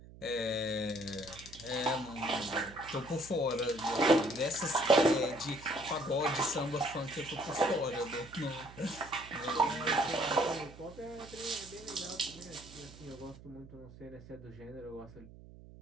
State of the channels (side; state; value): right; noise; hum, 18 dB below the sound